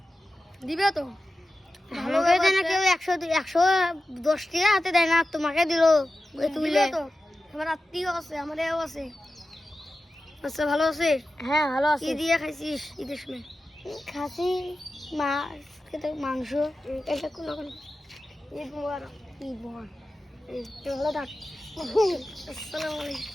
দিবে তো ভালো দেয় না কেউ। 110 টাকা হাতে দেয় না, তোমাকে দিল তুলে তো। আমার আত্মীয় আছে, আমার এও আছে। আচ্ছা ভালো আছে? হ্যাঁ ভালো আছে। কি দিয়ে খাইছিস ঈদের সময়? খাসি, মাছ, মাংস। এটা কোনো ঈদ মোবারক। ঈদ মোবারক। ভালো থাক।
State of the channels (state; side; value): normal; both; correlation 0.93